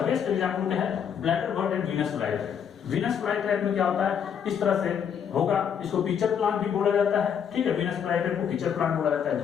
बेस्ट एग्जांपल क्या है, bladder bird and Venus flytrap. Venus flytrap में क्या होता है, इस तरह से होगा, इसको पिचर प्लांट भी बोला जाता है। ठीक है, वीनस फ्लाईट्रैप को पिचर प्लांट बोला जाता है,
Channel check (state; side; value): quieter; right; 7.9 dB